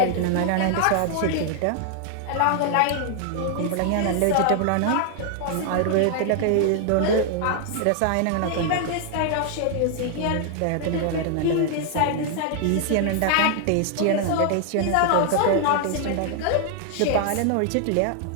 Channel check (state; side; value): different; both; correlation 0.00